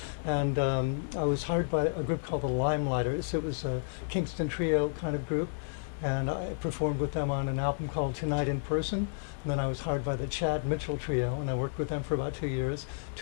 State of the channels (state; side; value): silent; right; 57 dB below the other